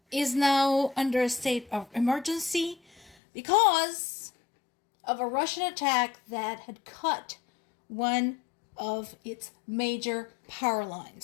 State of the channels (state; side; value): drops out; right; at 3.2 s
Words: is now under a state of emergency because of a Russian attack that had cut one of its major power